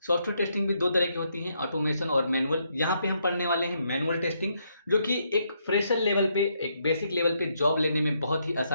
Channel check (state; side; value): inverted; both; correlation -0.76